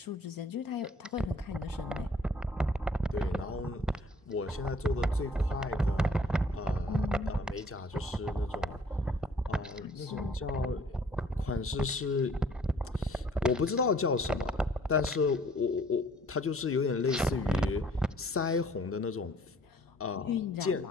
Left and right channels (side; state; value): both; normal; correlation 0.58